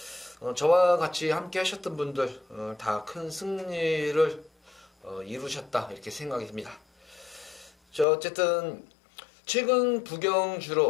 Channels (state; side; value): drops out; right; at 8.1 s